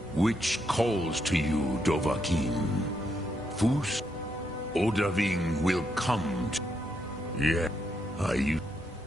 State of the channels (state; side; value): normal; both; correlation 0.79